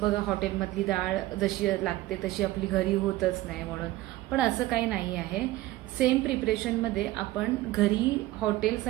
बघा हॉटेलमधली डाळ जशी लागते तशी आपली घरी होतच नाही म्हणून. पण असं काही नाही आहे. सेम प्रिपरेशनमध्ये आपण घरी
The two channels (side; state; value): left; quieter; 17.0 dB